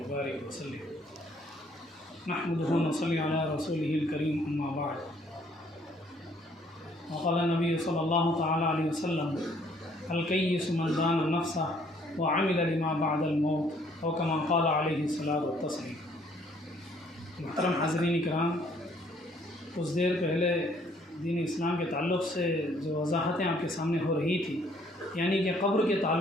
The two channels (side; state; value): both; normal; correlation 0.63